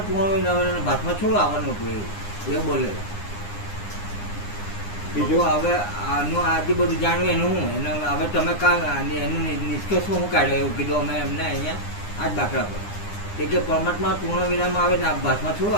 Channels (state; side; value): late; right; 9.8 ms